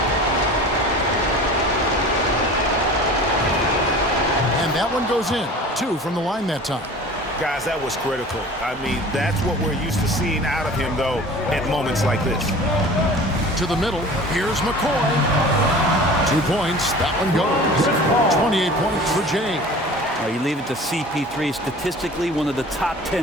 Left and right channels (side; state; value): both; normal; correlation 0.41